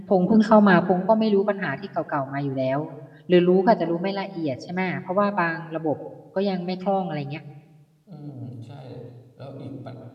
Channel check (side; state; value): both; identical; correlation 1.00